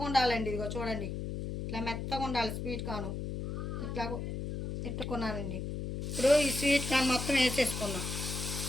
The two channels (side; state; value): left; noise; hum, 4 dB below the sound